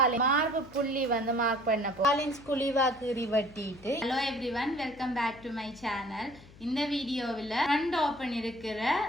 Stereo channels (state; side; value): noise; left; hum, 22 dB below the sound